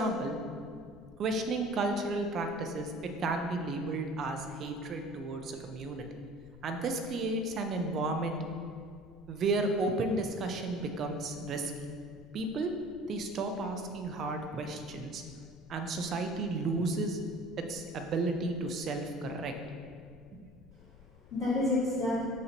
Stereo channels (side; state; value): left; noise; rumble, 21 dB below the sound